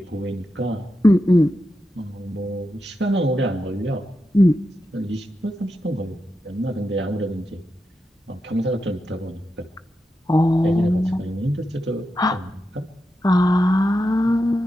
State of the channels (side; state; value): both; normal; correlation 0.88